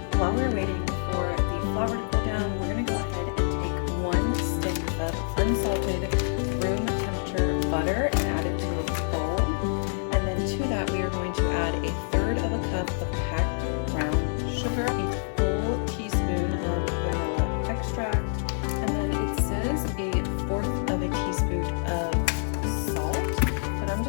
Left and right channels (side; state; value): right; silent; digital silence